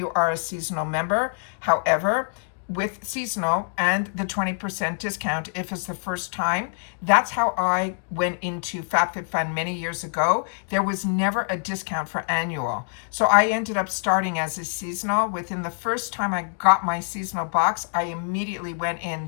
are a seasonal member. However, with seasonal and the 20% discount if it's the first time, that's how I went into FabFitFun many years ago. There was never a discount for annual. So I ended up starting as a seasonal. Within the first time I got my seasonal box, I immediately went in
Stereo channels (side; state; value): right; silent; digital silence